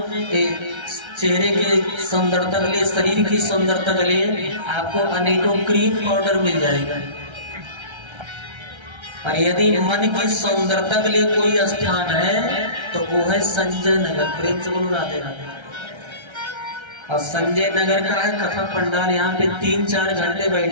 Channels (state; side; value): late; left; 1.3 ms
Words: चेहरे के सुंदरता के लिए, शरीर की सुंदरता के लिए आपको अनेकों क्रीम पाउडर मिल जाएगा। और यदि मन की सुंदरता के लिए कोई स्थान है तो वो है संजय नगर। प्रेम से बोलो राधे राधे। और संजय नगर का है कथा पंडाल। यहाँ पे 3-4 घंटे